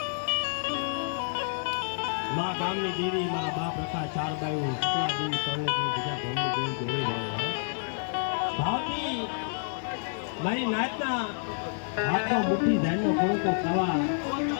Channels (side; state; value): right; silent; 56 dB below the other